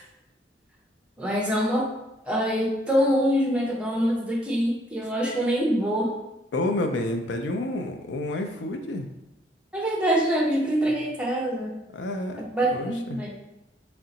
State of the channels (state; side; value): normal; both; correlation 0.63